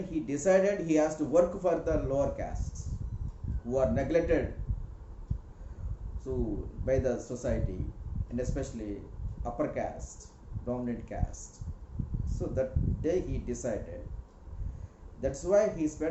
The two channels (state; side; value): identical; both; correlation 1.00